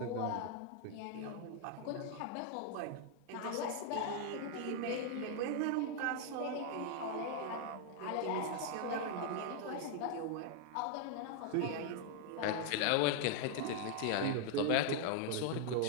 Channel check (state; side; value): different; both; correlation 0.00